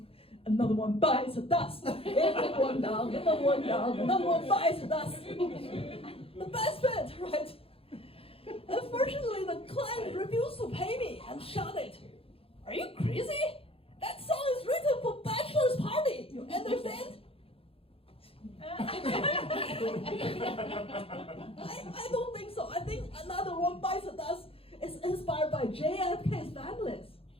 Another one bites the dust. Another one down, another one down, another one bites the dust. The best bit, right? Unfortunately, the client refused to pay me and shouted, "Are you crazy? That song is written for bachelor's party, you understand?" I don't think so. I think Another One Bites the Dust is inspired by JFK's families.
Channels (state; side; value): late; right; 0.27 ms